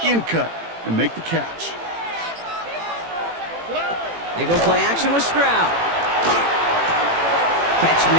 in cut and make the catch. They go play action with Stroud. Catch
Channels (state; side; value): late; left; 18 ms